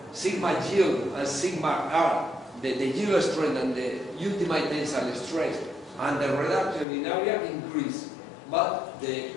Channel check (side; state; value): right; drops out; at 6.9 s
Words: sigma yield and sigma R, the yield strength and the ultimate tensile stress, and the reduction in area increase, but the